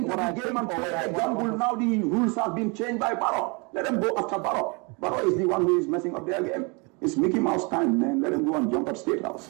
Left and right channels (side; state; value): left; quieter; 30.8 dB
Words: Now the rules have been changed by Barrow. Let them go after Barrow. Barrow is the one who is messing up their game. It's Mickey Mouse time, man. Let them go and jump at State House.